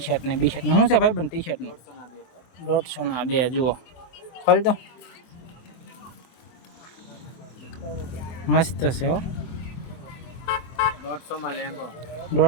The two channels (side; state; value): right; late; 23 ms